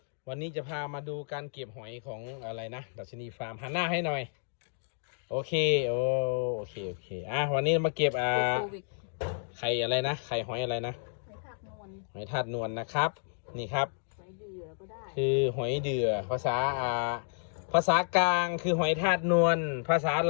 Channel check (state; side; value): silent; right; digital silence